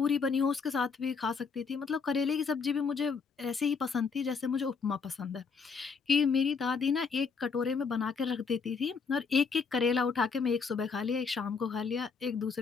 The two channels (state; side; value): quieter; right; 5.3 dB